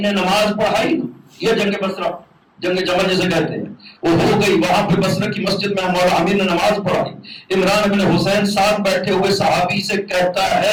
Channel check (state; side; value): identical; both; correlation 1.00